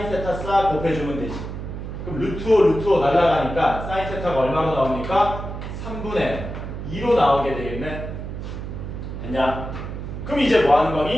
세타 싹 곱해주면 되지. 그럼 루트 5 루트 5 날라가니까 사인 세타가 얼마로 나옵니까? 3분의 2로 나오게 되겠네. 됐냐? 그럼 이제 뭐 하는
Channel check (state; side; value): noise; right; hum, 7 dB below the sound